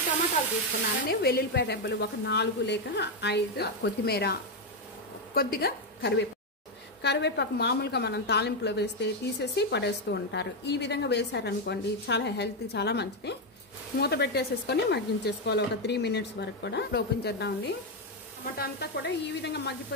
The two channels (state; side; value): normal; both; correlation 0.05